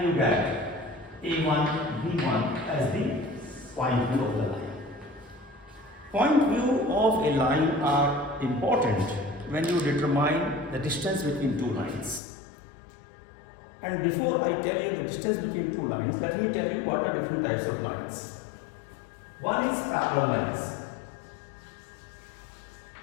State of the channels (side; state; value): right; drops out; at 12.2 s